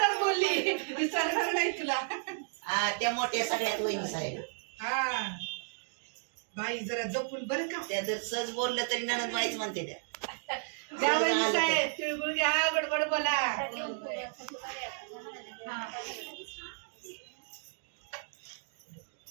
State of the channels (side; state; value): left; silent; digital silence